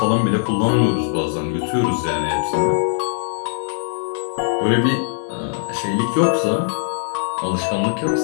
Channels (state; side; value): silent; right; digital silence